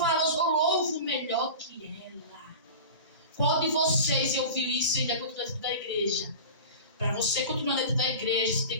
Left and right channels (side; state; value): both; inverted; correlation -0.33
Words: eu louvo melhor que ela. Qual de vocês ouviu isso e ainda continua dentro da igreja? Para você continuar dentro da igreja, você tem